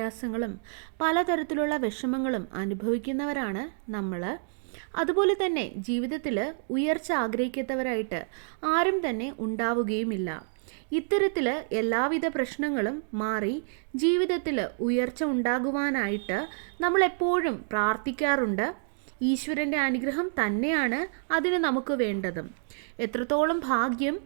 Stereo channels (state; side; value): silent; left; digital silence